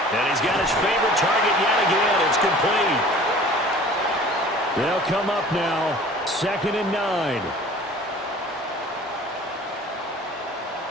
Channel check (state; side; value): normal; both; correlation 0.46